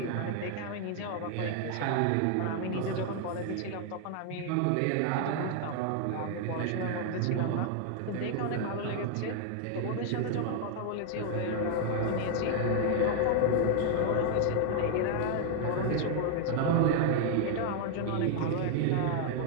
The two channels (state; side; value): different; both; correlation 0.00